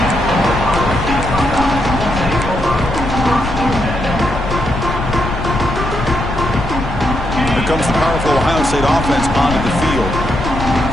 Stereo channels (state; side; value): noise; left; rumble, 5 dB below the sound